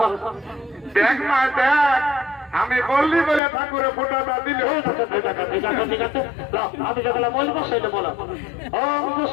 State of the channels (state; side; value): drops out; right; at 3.4 s